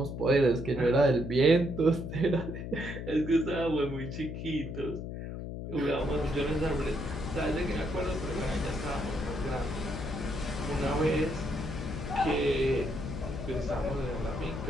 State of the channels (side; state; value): left; noise; hum, 7 dB below the sound